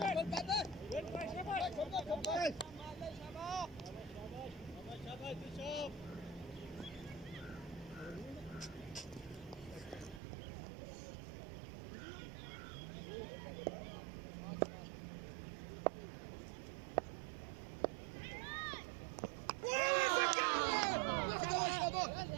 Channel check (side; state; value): left; drops out; at 10.2 s